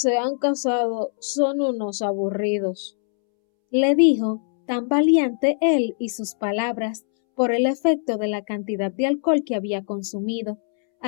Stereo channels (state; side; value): silent; right; 64 dB below the other